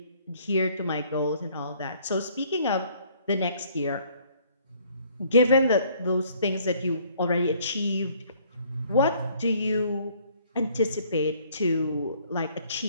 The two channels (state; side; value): inverted; both; correlation -0.61